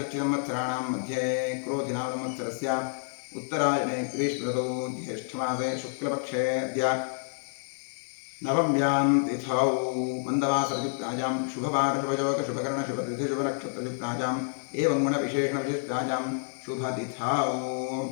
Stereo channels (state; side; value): silent; right; digital silence